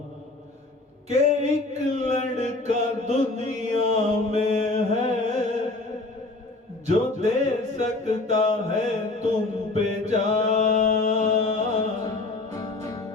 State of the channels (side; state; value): right; quieter; 3.1 dB